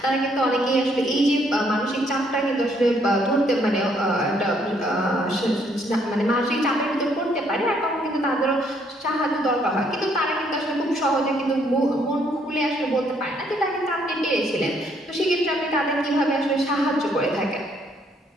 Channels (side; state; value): both; normal; correlation 0.68